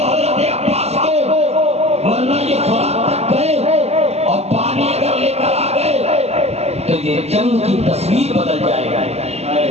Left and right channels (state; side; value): late; left; 0.30 ms